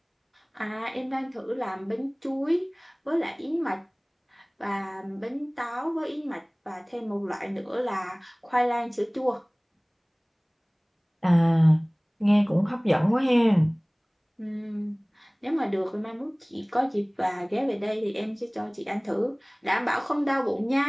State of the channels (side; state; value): both; identical; correlation 1.00